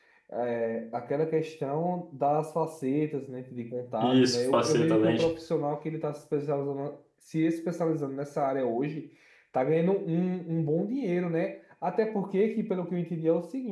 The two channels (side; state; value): both; identical; correlation 1.00